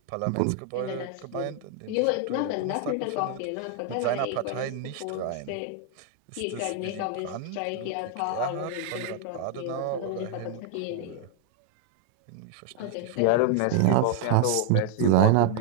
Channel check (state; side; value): different; both; correlation 0.00